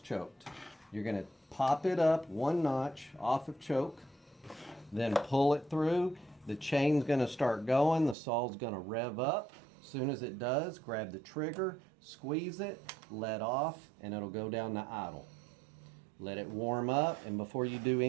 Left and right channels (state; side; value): drops out; left; at 8.2 s